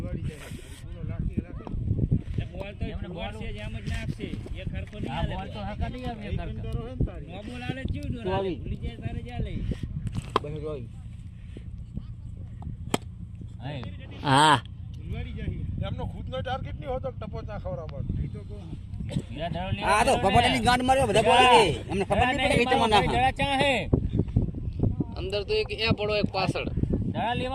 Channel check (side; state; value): both; identical; correlation 1.00